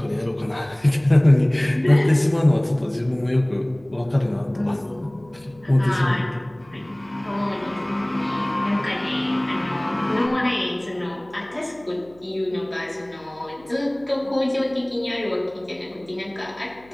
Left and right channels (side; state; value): left; noise; hum, 27 dB below the sound